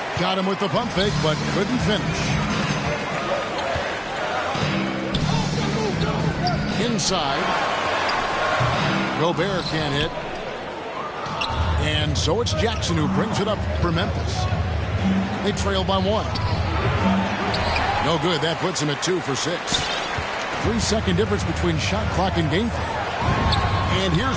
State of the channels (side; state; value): both; identical; correlation 1.00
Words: Got him with the pump fake, but couldn't finish. Inside. Gobert can't hit. And so it's Jackson who brings it up for Memphis. They trail by 1. No good. That puts him at 2 for 6. 3-second difference between shot clock and game clock. And